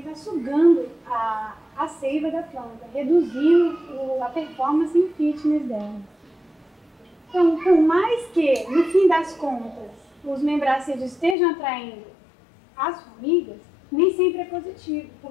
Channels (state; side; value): drops out; right; at 11.4 s